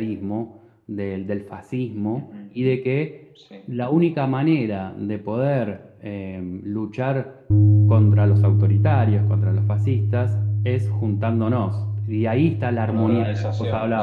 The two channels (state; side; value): identical; both; correlation 1.00